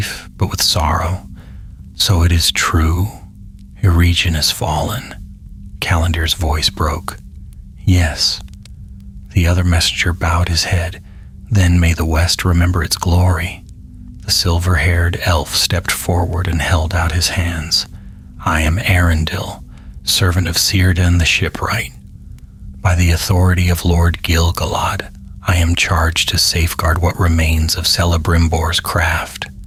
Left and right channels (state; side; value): identical; both; correlation 1.00